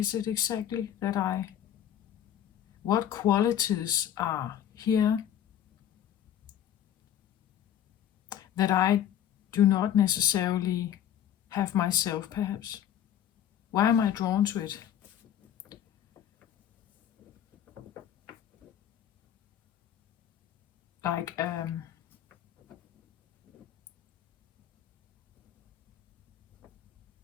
it exactly that what qualities are here that I do not necessarily have myself, perhaps. Why am I drawn to it? Like,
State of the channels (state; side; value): quieter; right; 10.3 dB